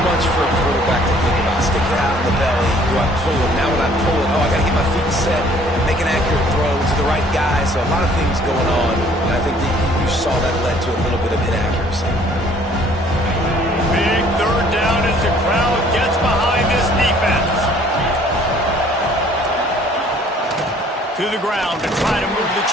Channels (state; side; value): normal; both; correlation 0.57